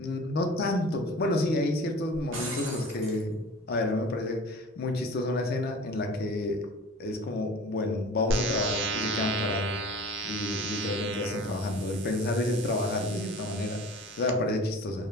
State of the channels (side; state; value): both; normal; correlation 0.42